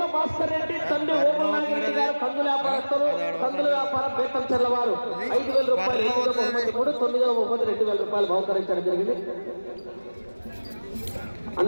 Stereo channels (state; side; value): inverted; both; correlation -1.00